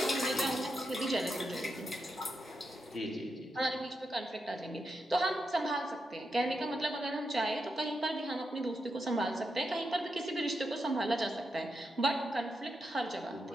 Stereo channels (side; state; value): both; normal; correlation 0.86